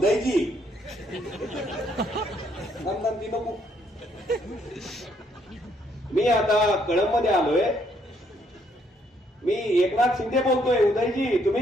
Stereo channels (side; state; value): both; normal; correlation 0.70